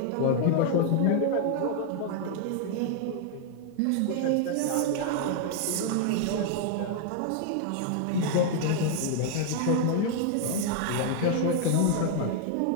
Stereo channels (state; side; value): different; both; correlation 0.00